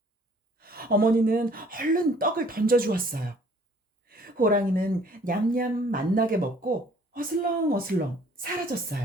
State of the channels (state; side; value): normal; both; correlation 0.56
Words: 어머니는 얼른 떡을 던져주었어요. 호랑이는 냠냠 맛나게 먹고 어슬렁어슬렁